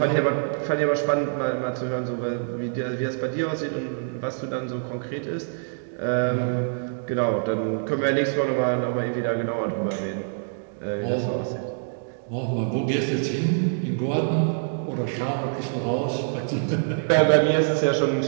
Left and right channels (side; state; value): left; silent; digital silence